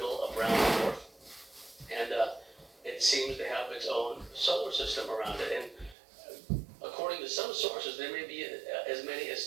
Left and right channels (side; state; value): left; drops out; at 6.0 s